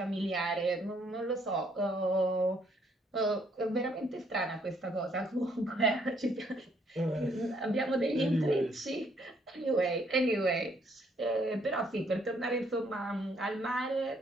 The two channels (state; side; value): normal; both; correlation 0.68